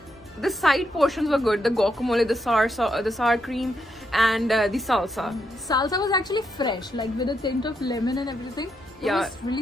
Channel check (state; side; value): normal; both; correlation 0.80